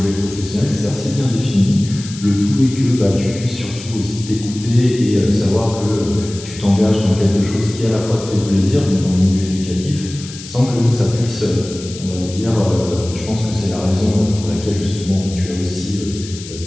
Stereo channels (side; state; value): left; noise; hiss, 14 dB below the sound